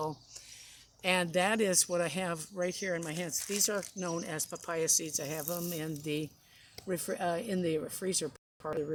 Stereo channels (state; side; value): identical; both; correlation 1.00